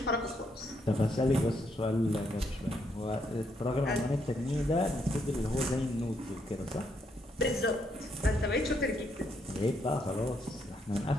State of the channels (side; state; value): both; normal; correlation 0.75